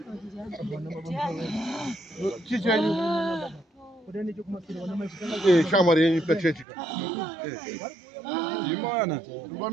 Chichenyu. Shamari yenyu pachechika. Imana.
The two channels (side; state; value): left; drops out; at 6.7 s